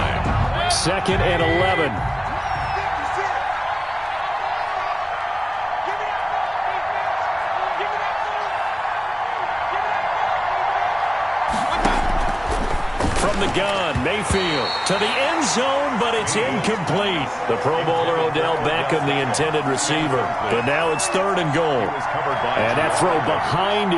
2nd and 11. From the gun, Mayfield to the end zone, but it's incomplete. The Pro Bowler Odell Beckham, the intended receiver. But now it's 3rd and goal. And that throw behind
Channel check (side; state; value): both; identical; correlation 1.00